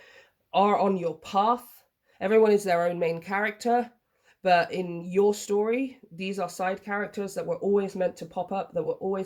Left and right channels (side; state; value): both; identical; correlation 1.00